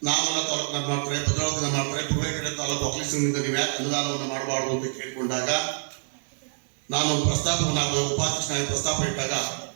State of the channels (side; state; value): left; silent; 61 dB below the other